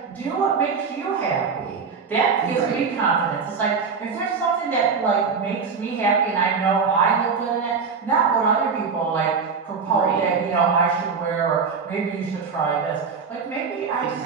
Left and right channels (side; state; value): left; quieter; 5.5 dB